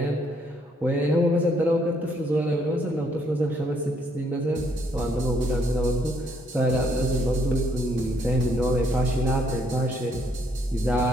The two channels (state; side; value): normal; both; correlation 0.70